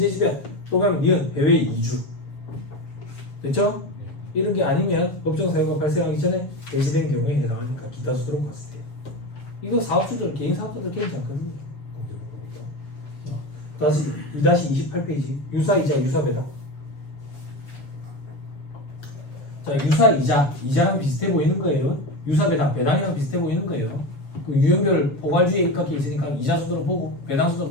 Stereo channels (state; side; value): late; right; 7.1 ms